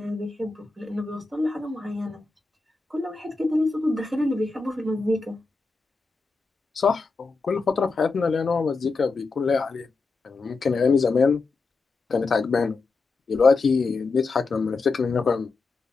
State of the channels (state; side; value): quieter; right; 4.0 dB